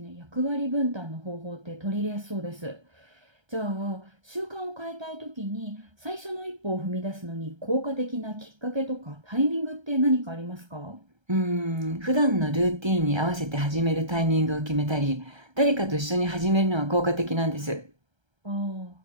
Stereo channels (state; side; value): late; left; 1.3 ms